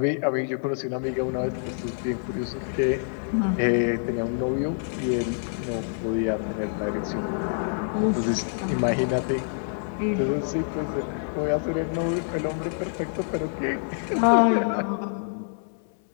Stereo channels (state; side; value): silent; right; 61 dB below the other